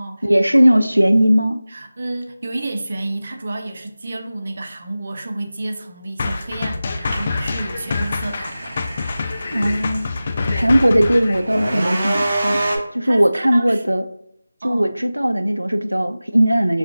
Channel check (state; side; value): inverted; both; correlation -0.97